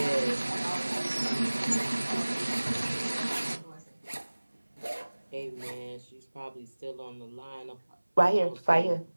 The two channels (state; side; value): inverted; both; correlation -1.00